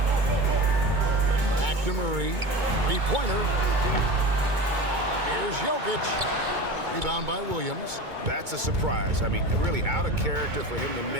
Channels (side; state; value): left; late; 2.2 ms